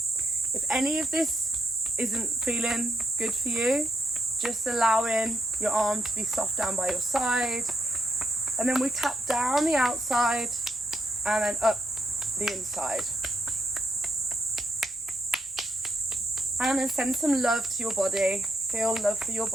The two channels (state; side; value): normal; both; correlation 0.79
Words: If any of this isn't feeling good for you, just allowing your arm to be soft down by your side. And then we tap down the outside and then up the inside. And then send some love to your body. Feel love for your